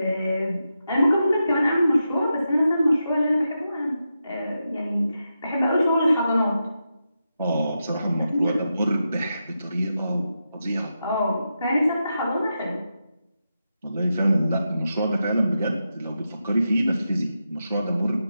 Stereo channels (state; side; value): inverted; both; correlation -0.88